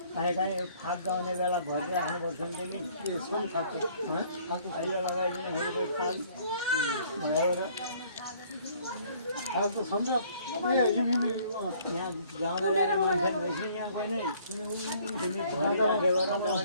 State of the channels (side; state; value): both; inverted; correlation -0.59